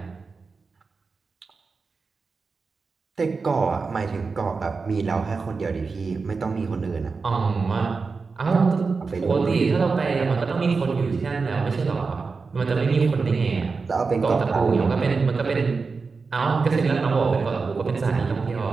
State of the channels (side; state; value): left; quieter; 4.6 dB